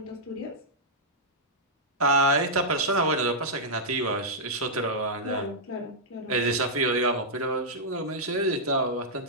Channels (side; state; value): both; normal; correlation -0.11